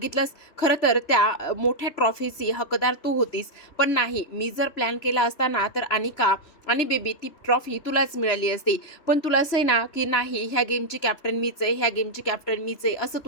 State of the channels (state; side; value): late; right; 3.0 ms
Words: खरं तर त्या मोठ्या ट्रॉफीची हकदार तू होतीस, पण नाही, मी जर प्लॅन केला असता ना तर अनिका आणि बेबी ती ट्रॉफी तुलाच मिळाली असती. पण तुला असं आहे ना की नाही, ह्या गेमची कॅप्टन मीच आहे, ह्या गेमची कॅप्टन मीच आहे, असं